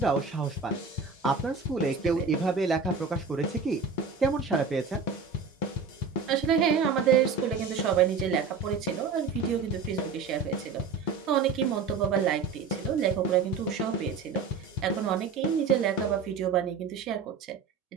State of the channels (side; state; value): left; quieter; 5.2 dB